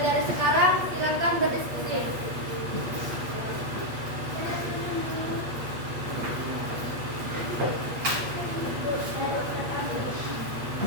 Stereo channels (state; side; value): late; left; 8.4 ms